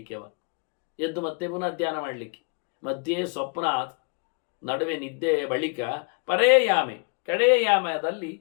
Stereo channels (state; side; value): quieter; right; 36.0 dB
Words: ಎದ್ದು ಮತ್ತೆ ಪುನಃ ಧ್ಯಾನ ಮಾಡಲಿಕ್ಕೆ, ಮಧ್ಯೆ ಸ್ವಪ್ನ, ನಡುವೆ ನಿದ್ದೆಯ ಬಳಿಕ ಪರೇ ಯಾಮೆ ಕಡೆಯ ಯಾಮದಲ್ಲಿ